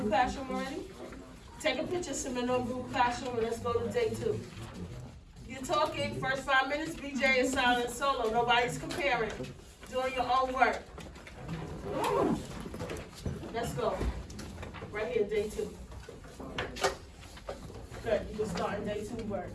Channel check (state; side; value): identical; both; correlation 1.00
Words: Classroom already? Take a picture, submit on Google Classroom, and let's go to day 2. You're talking, first 5 minutes, BJ is silent solo. Nobody's comparing. Doing your own work. Let's go. Right here, day 2. Good, you can start in day 2 work.